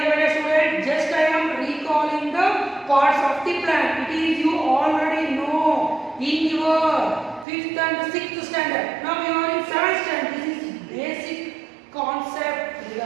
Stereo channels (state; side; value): drops out; left; at 7.5 s